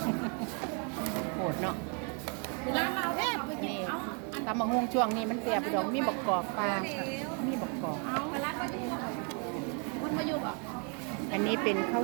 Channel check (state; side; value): quieter; left; 38.0 dB